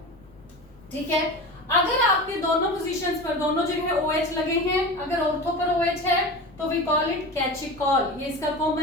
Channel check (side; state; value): left; noise; rumble, 26 dB below the sound